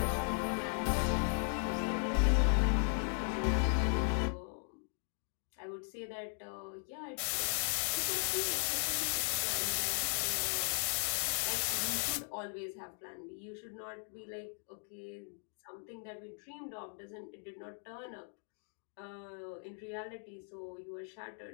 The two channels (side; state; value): right; silent; 53 dB below the other